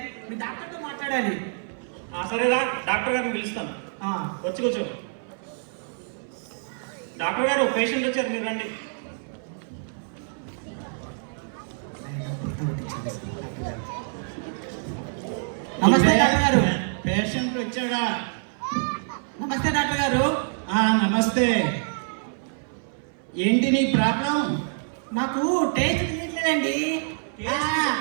మీ డాక్టర్తో మాట్లాడాలి. సరేరా, డాక్టర్ గారిని పిలుస్తాను. వచ్చి కూర్చో. డాక్టర్ గారు, పేషెంట్ వచ్చారు, మీరు రండి. నమస్తే డాక్టర్ గారు. పేషెంట్ వచ్చాడా? నమస్తే డాక్టర్ గారు. నమస్తే. ఏంటి నీ ప్రాబ్లం? నాకు టేస్ట్ తెలియట్లేదండి.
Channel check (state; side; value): silent; left; 58 dB below the other